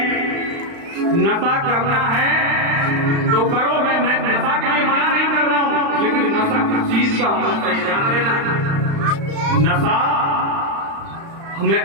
नशा करना है तो करो। मैं नशा के लिए मना नहीं कर रहा हूँ, लेकिन नशा किस चीज का होना चाहिए ध्यान देना। नशा हमें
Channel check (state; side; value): late; left; 35 ms